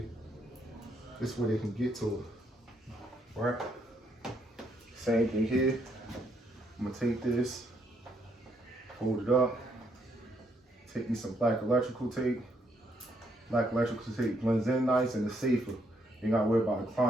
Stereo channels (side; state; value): both; normal; correlation 0.73